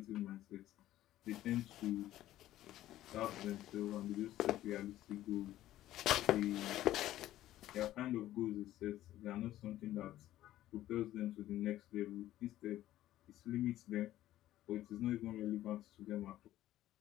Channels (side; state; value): right; quieter; 14.0 dB